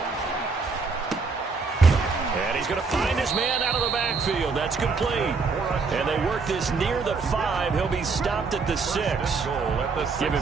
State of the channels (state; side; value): quieter; left; 4.5 dB